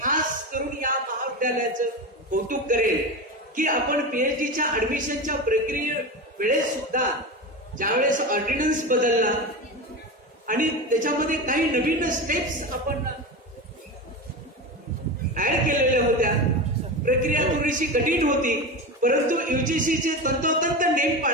करून या महाविद्यालयाचं कौतुक करेल की आपण PhDच्या ऍडमिशनच्या प्रक्रिये वेळेस सुद्धा ज्यावेळेस ऑर्डिनन्स बदलला आणि त्याच्यामध्ये काही नवीन स्टेप्स आपण ऍड केलेल्या होत्या. प्रक्रिया थोडीशी कठीण होती परंतु UGCचे तंतोतंत नेम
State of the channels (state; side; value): normal; both; correlation 0.23